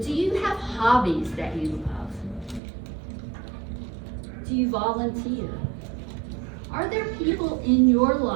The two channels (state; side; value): drops out; left; at 2.6 s